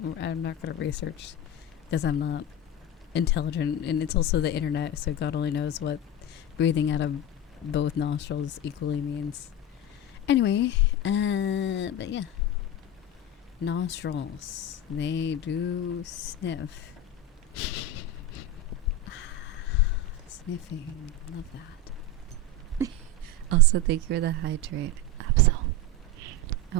I'm not going to research because I'm not intelligent, and it's also the internet, so God only knows what breathing out of both nostrils equally means. Anyway, but yeah, nostrils, they do sniff. Sniffing, love that. Also, thank you for the hydrate, Absol.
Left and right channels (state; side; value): normal; both; correlation 0.20